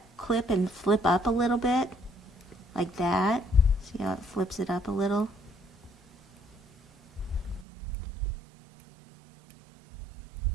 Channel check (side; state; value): left; drops out; at 7.7 s